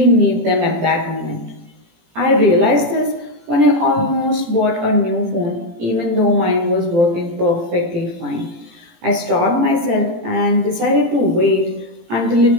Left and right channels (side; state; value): left; late; 18 ms